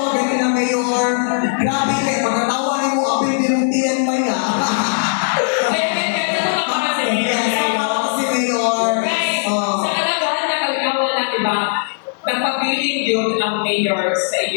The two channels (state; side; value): silent; right; 63 dB below the other